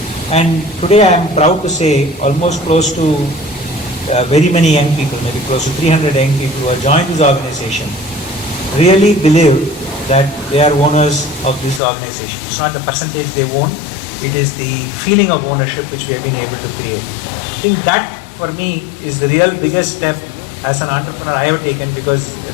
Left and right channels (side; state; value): right; drops out; at 11.8 s